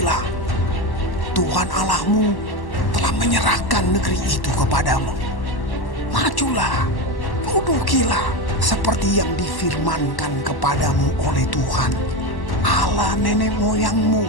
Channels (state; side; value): late; right; 1.1 ms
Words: Tuhan Allahmu telah menyerahkan negeri itu kepadamu. Majulah, dudukilah seperti yang difirmankan kepadamu oleh Tuhan Allah nenek moyangmu.